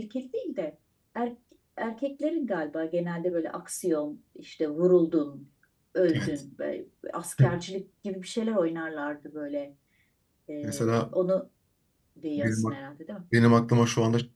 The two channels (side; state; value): both; identical; correlation 1.00